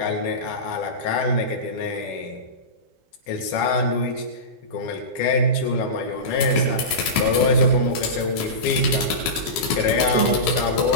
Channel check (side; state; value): right; late; 13 ms